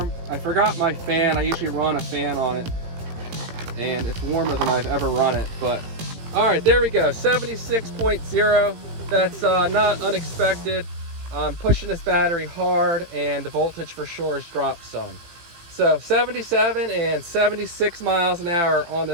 I forgot my fan. I usually run a fan on it, and it's warmer than I've ever run it. But all right, there we go, 76.0. That's not unexpected. I'm pushing this battery hard, and the voltage for sure has dropped some. So 77 and 76 miles an hour on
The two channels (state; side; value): late; left; 18 ms